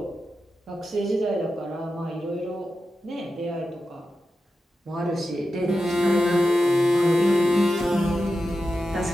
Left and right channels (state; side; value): normal; both; correlation 0.90